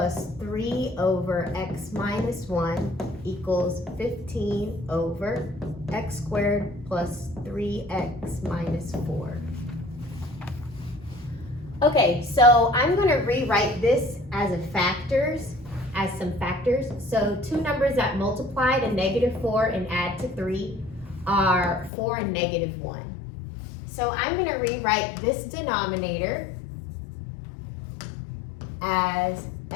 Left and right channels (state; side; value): drops out; right; at 21.9 s